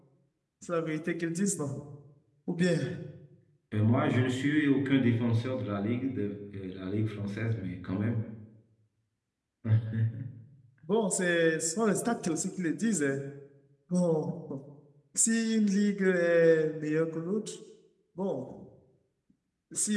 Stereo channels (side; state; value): both; identical; correlation 1.00